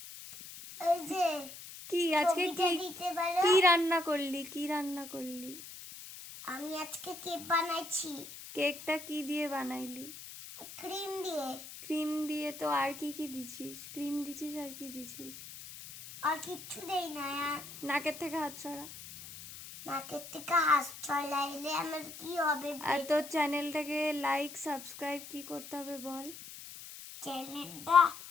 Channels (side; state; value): left; noise; hiss, 13 dB below the sound